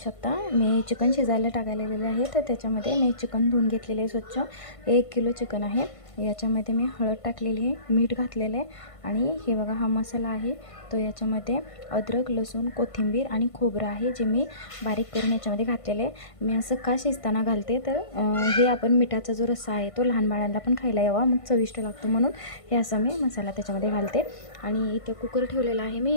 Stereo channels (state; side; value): late; right; 1.5 ms